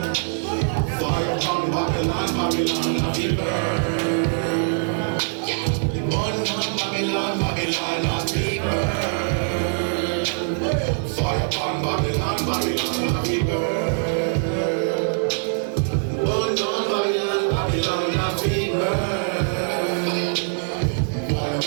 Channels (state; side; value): silent; left; 60 dB below the other